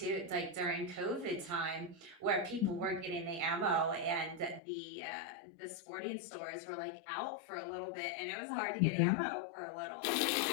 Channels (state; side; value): drops out; right; at 4.6 s